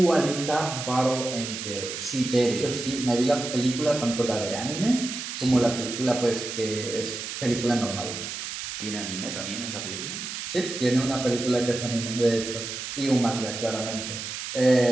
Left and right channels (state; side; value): noise; right; hiss, 6 dB below the sound